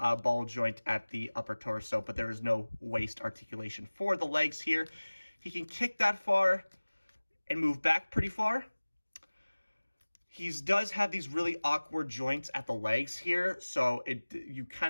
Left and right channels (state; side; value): inverted; both; correlation -1.00